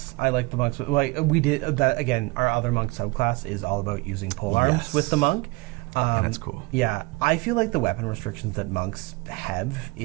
I like the monks with... we did that again. Our other monk subclass is all about using pole arms with the monk. That's cool. Yeah. I feel like the weapon restrictions that monks have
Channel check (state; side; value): quieter; left; 24.8 dB